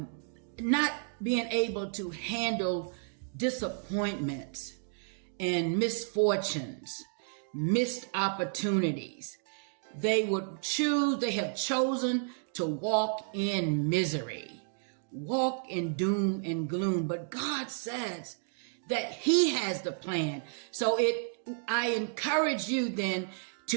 being able to handle disappointments and misfortunes, missed opportunities. They have chosen to walk in misery, walk in doom and gloom. But God says that He has the plan. So I encourage you then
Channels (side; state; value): left; silent; digital silence